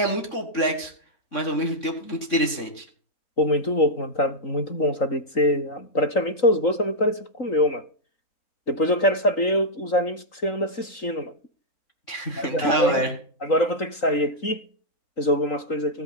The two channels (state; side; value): late; right; 3.6 ms